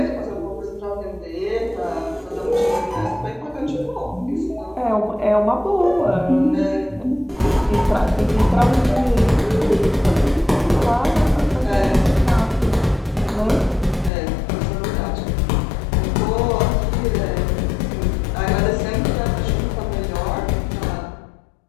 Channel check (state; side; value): drops out; right; at 14.1 s